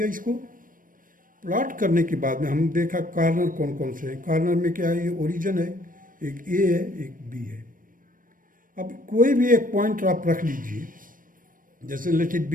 इसको. प्लॉट करने के बाद में हम देखा कार्नर कौन कौन से हैं. कार्नर में क्या है, ये ओरिजिन है, एक ए है, एक बी है. अब कोई भी एक पॉइंट आप रख लीजिए, जैसे लेट इट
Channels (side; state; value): left; late; 0.40 ms